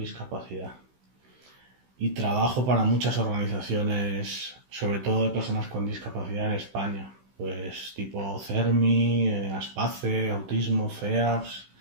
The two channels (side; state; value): left; late; 16 ms